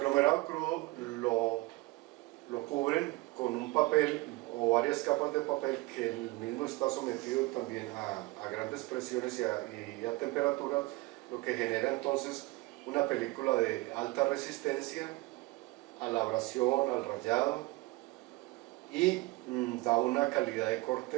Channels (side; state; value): left; quieter; 21.7 dB